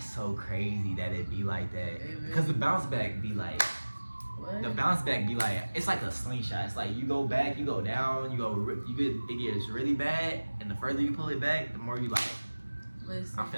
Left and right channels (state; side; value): inverted; both; correlation -1.00